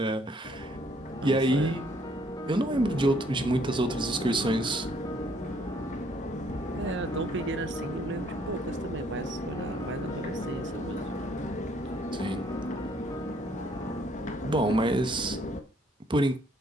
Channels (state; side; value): normal; both; correlation 0.65